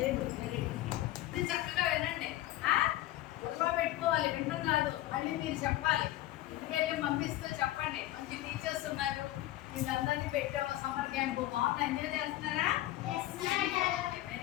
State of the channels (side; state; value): right; quieter; 15.4 dB